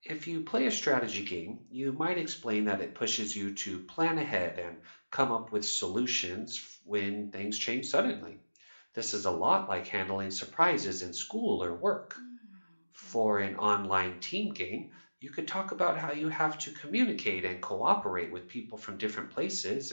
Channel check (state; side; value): inverted; both; correlation -1.00